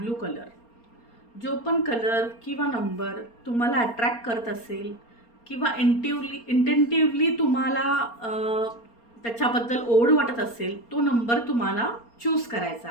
कलर. जो पण कलर किंवा नंबर तुम्हाला अट्रॅक्ट करत असेल किंवा इंटेंटिव्हली तुम्हाला त्याच्याबद्दल ओढ वाटत असेल तो नंबर तुम्हाला चूज करायचा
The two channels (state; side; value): late; right; 4.3 ms